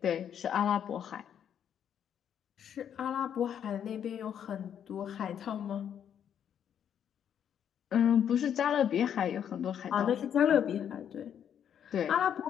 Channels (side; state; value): right; quieter; 8.9 dB